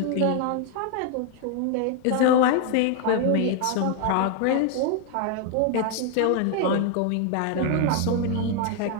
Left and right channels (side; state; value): both; different; correlation 0.01